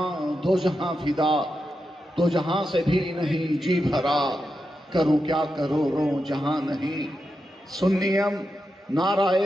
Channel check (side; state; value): both; normal; correlation 0.88